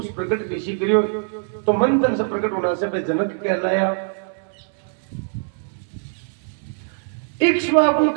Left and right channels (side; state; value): left; silent; 64 dB below the other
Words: प्रकट ऋषि करियो, तो मंथन से प्रकट होना से वे जनक कहलाया। इक्ष्वाकु